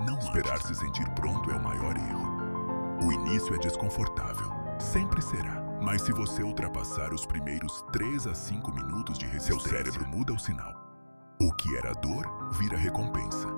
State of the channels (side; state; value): both; inverted; correlation -1.00